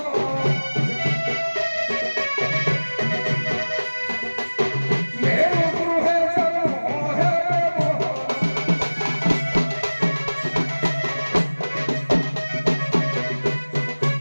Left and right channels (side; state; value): both; inverted; correlation -1.00